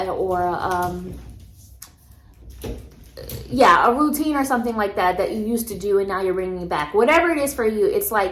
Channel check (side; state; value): both; identical; correlation 1.00